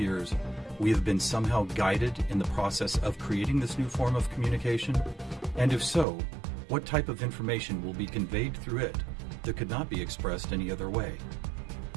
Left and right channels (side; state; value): left; drops out; at 6.1 s